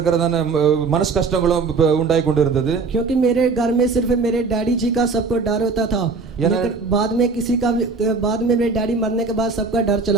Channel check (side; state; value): left; quieter; 4.4 dB